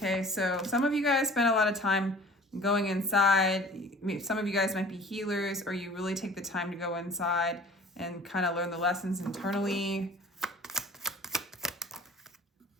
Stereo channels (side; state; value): both; normal; correlation 0.47